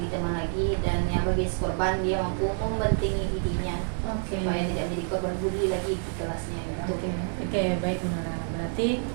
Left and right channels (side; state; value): left; silent; 57 dB below the other